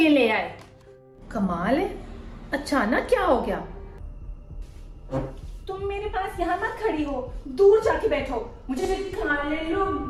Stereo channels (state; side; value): identical; both; correlation 1.00